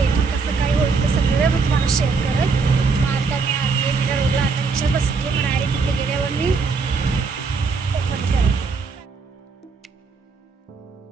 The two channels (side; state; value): left; quieter; 4.6 dB